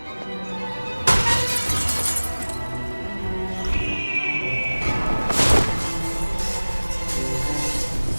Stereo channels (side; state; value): both; inverted; correlation -1.00